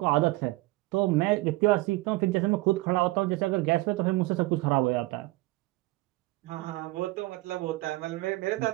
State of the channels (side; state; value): left; quieter; 20.7 dB